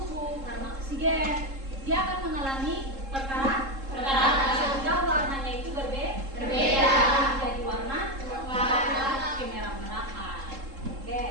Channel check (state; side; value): late; left; 3.7 ms